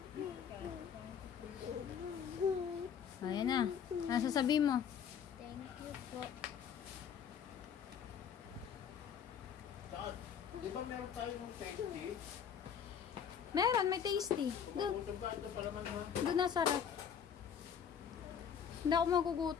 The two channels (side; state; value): right; quieter; 7.8 dB